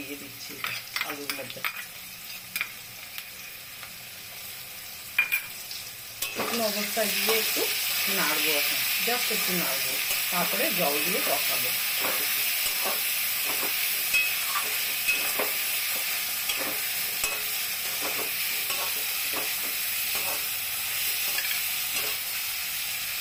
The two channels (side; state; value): both; identical; correlation 1.00